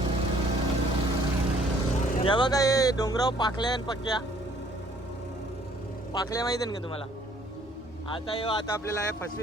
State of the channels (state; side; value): normal; both; correlation 0.60